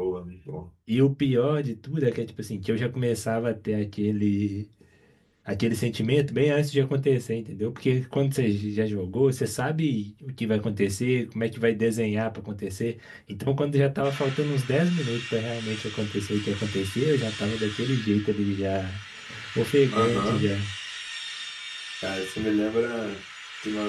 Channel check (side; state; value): both; identical; correlation 1.00